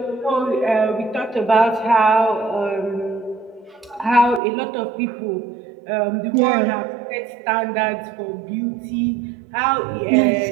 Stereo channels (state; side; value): drops out; left; at 4.4 s